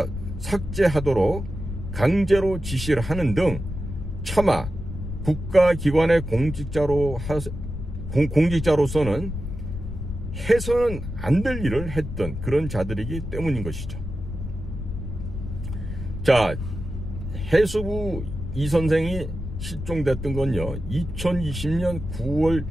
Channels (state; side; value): noise; left; rumble, 7 dB below the sound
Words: 삭제하도록 강제로 지시를 하는 등 차마 국가기관의 공직자로서는 해서는 안 될 일을 했던 그런 자들이기 때문인 것이죠. 자, 해수부 이 선생이 실종됐던 건요, 2020년 9월